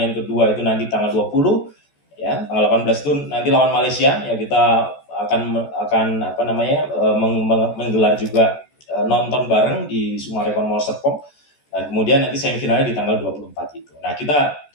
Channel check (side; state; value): right; late; 14 ms